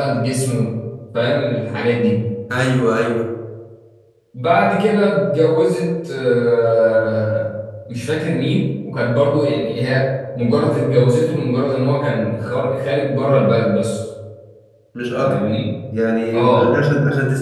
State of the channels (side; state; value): both; identical; correlation 1.00